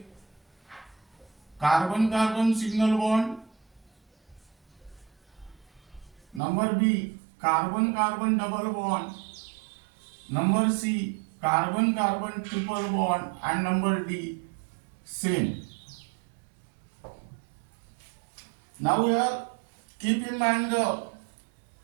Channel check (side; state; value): left; drops out; at 6.4 s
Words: carbon-carbon single bond. Number B, carbon-carbon double bond. Number C, carbon-carbon triple bond, and number D, same. Now here keep in mind the